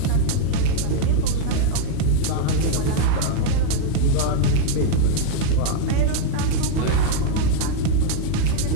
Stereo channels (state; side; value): different; both; correlation 0.00